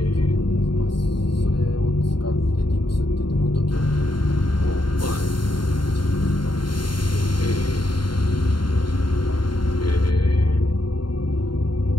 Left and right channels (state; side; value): late; right; 0.72 ms